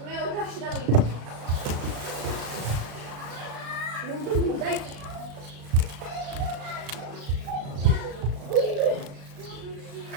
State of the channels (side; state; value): left; late; 36 ms